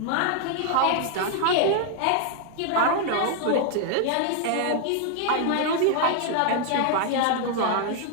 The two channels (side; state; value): both; different; correlation 0.00